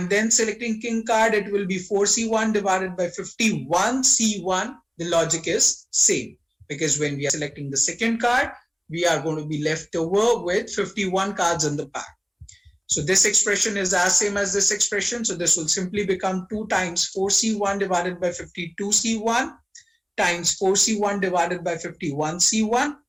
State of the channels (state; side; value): identical; both; correlation 1.00